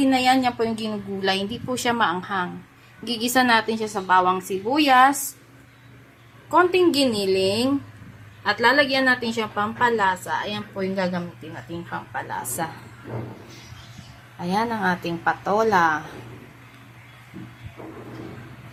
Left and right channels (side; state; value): both; identical; correlation 1.00